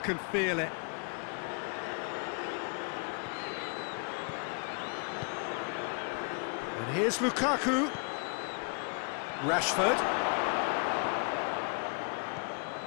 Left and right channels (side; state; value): right; quieter; 39.8 dB